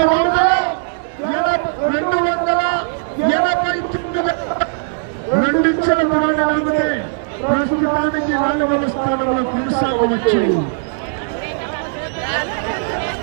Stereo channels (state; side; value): silent; left; digital silence